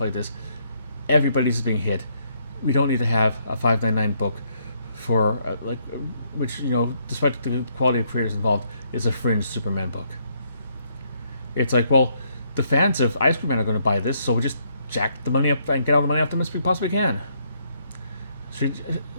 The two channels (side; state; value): both; inverted; correlation -0.72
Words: like this. Everybody's being hit. We don't need to have a $5.99 book for which, despite the quality of creators involved, is a fringe Superman book. It's like, well, the fans of Ice Cream Man are going to buy this, so we just jack the money up and get all the money off them as we possibly can.